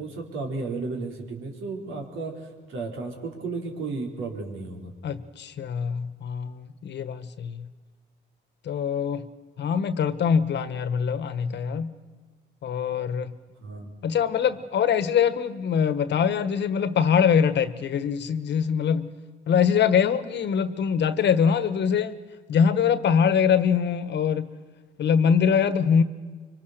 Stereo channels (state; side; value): quieter; right; 6.5 dB